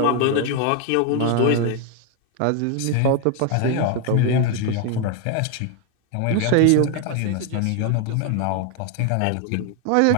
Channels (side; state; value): both; different; correlation 0.01